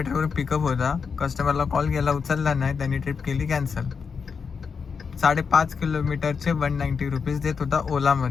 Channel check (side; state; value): right; quieter; 5.8 dB